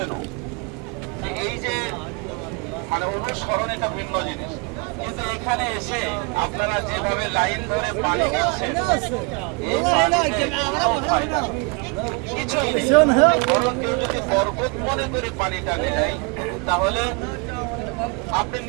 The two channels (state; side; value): quieter; left; 31.1 dB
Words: এই যে মানে অনুসরণ এটা ভিন্ন জিনিস, কিন্তু এখানে এসে আপনারা যেভাবে লাইন ধরে পানি নিচ্ছেন বরং কেউ যদি বরকত মনে করে পানিটা নেয় তাহলে আপনি